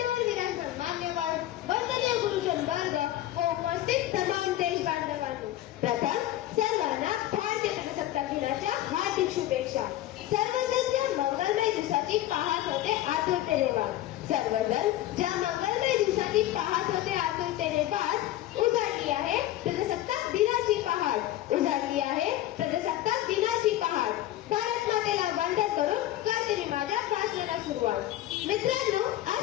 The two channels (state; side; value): quieter; right; 14.1 dB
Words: विराजमान मान्यवर, वंदनीय गुरुजन वर्ग व उपस्थित तमाम देश बांधवांनो, प्रथम सर्वांना भारतीय प्रजासत्ताक दिनाच्या हार्दिक शुभेच्छा। सर्वजण ज्या मंगलमय दिवसाची पाहत होते आतुरतेने वाट, सर्वजण ज्या मंगलमय दिवसाची पाहत होते आतुरतेने वाट, उजाडली आहे प्रजासत्ताक दिनाची पहाट, उजाडली आहे प्रजासत्ताक दिनाची पहाट। भारत मातेला वंदन करून करते मी माझ्या भाषणाला सुरुवात। मित्रांनो,